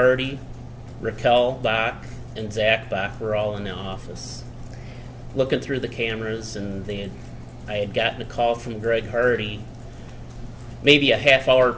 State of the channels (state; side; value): identical; both; correlation 1.00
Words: Raquel Bach, and Zach Bach were all in the office. Looking through the cameras, and I had gotten a call from Greg Hardy maybe a half hour